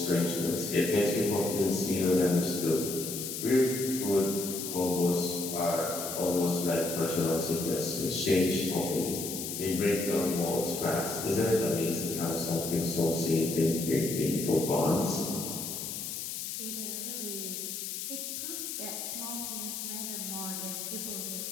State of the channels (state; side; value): noise; left; hiss, 5 dB below the sound